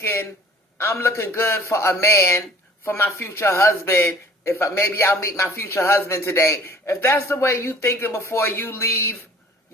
I'm looking good for a man, for my future husband, maybe I'll meet my future husband today. If that's the way you thinking before you leave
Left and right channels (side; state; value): both; normal; correlation 0.50